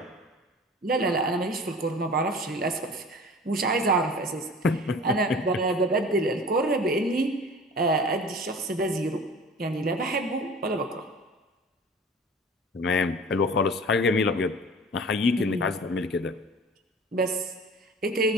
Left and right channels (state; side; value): normal; both; correlation 0.41